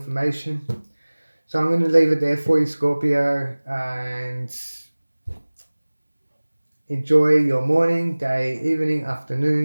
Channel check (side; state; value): both; inverted; correlation -1.00